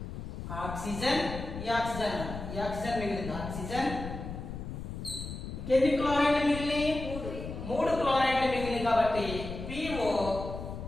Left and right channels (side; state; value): left; noise; rumble, 8 dB below the sound